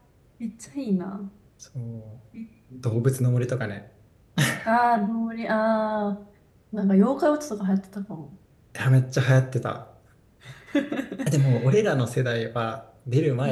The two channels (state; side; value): identical; both; correlation 1.00